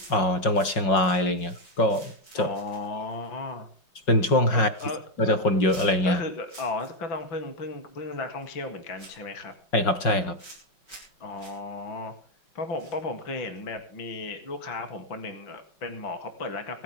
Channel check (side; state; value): right; late; 5.5 ms